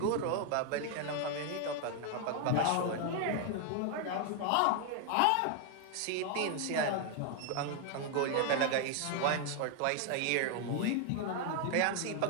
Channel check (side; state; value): both; different; correlation 0.00